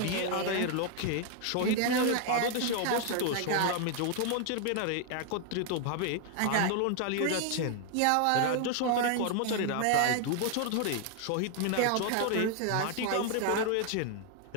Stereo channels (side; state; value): both; different; correlation 0.00